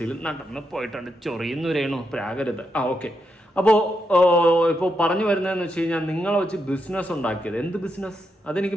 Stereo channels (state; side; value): normal; both; correlation 0.83